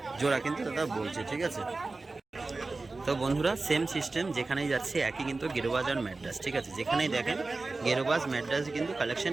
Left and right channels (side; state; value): left; quieter; 3.5 dB